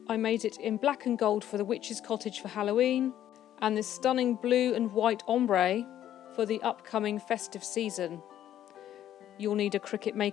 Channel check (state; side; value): quieter; right; 11.6 dB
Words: I made it in black and gold for the witch's cottage for Halloween, and this stunning blue and white ombre for the upcoming festive season. You'll need a Cricut